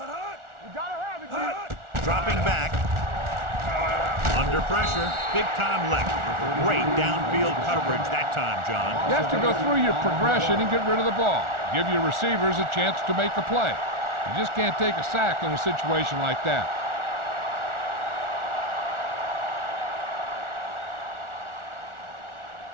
gotta have it, kid. Dropping back. Under pressure. Big-time lick. Great downfield coverage that time, John. You have to go through your progression and get rid of the ball. Give your receivers a chance to make a play. You just can't take a sack in a situation like that.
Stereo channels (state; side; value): late; left; 1.4 ms